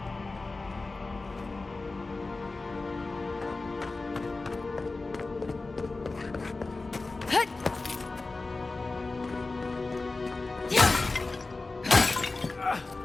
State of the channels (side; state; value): right; quieter; 3.5 dB